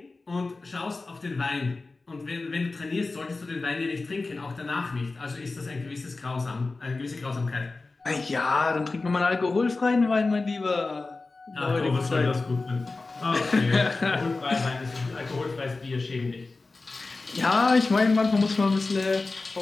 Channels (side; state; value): right; quieter; 3.6 dB